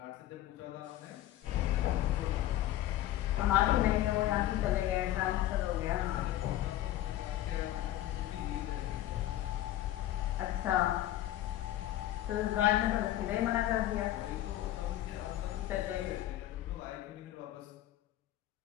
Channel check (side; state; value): right; quieter; 13.8 dB